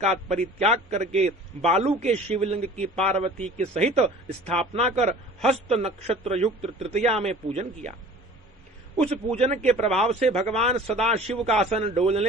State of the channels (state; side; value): normal; both; correlation 0.44